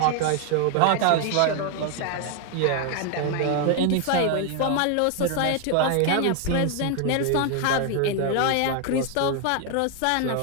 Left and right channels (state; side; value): different; both; correlation 0.00